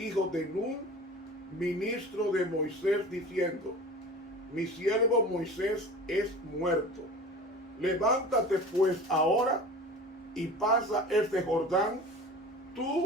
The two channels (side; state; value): both; normal; correlation 0.38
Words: de Nun, ministro de Moisés, diciendo: mi siervo Moisés es muerto. Levántate pues ahora y pasa este Jordán,